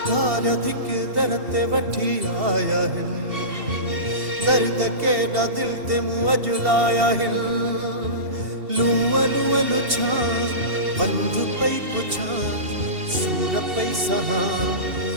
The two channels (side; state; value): left; late; 2.7 ms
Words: धिक दर ते वठी आया हिन दर्द केॾा दिल ते मुंहुं अजुलाया हिन लूअ लूअ लुछा बंध पई पुछां सूर पई सहां